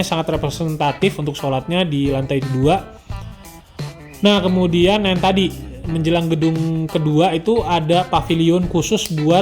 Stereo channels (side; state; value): both; identical; correlation 1.00